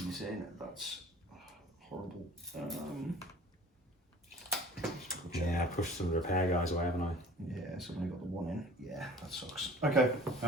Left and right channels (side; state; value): both; normal; correlation 0.46